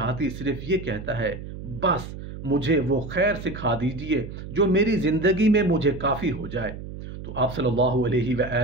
صرف یہ کہتا ہے، بس مجھے وہ خیر سکھا دیجئے جو میری زندگی میں مجھے کافی ہو جائے۔ تو آپ صلی اللہ علیہ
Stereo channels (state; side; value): noise; right; hum, 10 dB below the sound